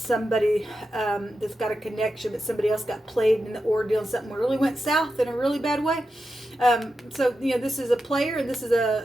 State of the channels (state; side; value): normal; both; correlation 0.89